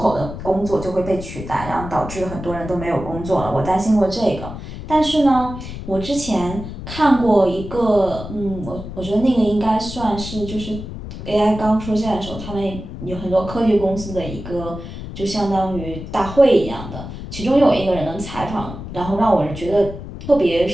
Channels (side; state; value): left; noise; rumble, 10 dB below the sound